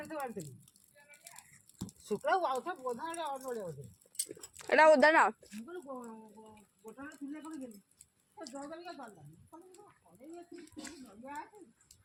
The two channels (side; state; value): both; identical; correlation 1.00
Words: बांधली शुक्ला आउथा बोधा रे और नड़िया होते एटा उधर ना गोटा चुली को गेली तो जगल का बांधा अरे ये नड़िया है